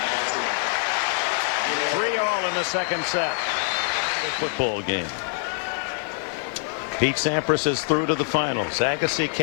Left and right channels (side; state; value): right; silent; 62 dB below the other